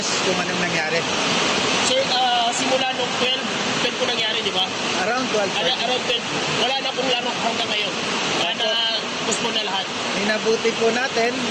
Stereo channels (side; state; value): both; identical; correlation 1.00